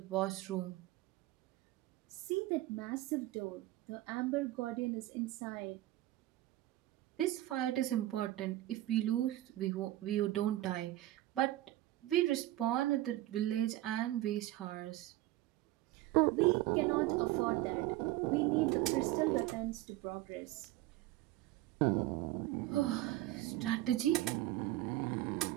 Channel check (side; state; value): left; quieter; 16.0 dB